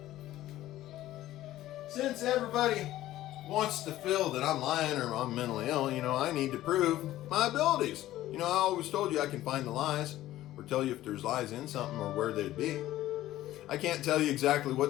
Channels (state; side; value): quieter; right; 14.7 dB